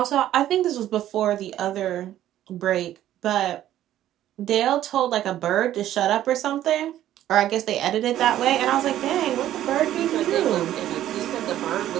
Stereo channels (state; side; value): quieter; left; 12.6 dB